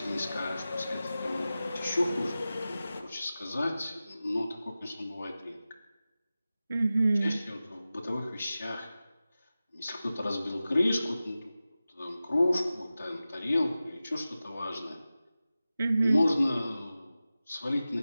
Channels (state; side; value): inverted; both; correlation -0.95